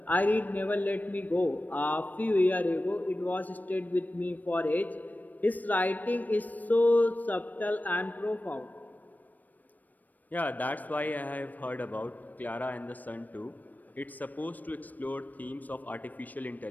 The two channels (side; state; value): right; late; 0.084 ms